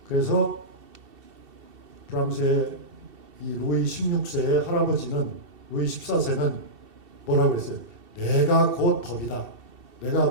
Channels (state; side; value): late; left; 2.7 ms